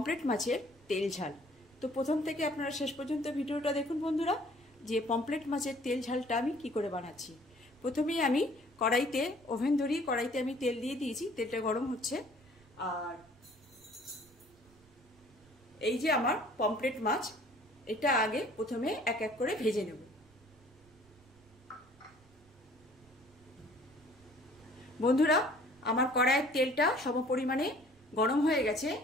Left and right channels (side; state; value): right; noise; rumble, 28 dB below the sound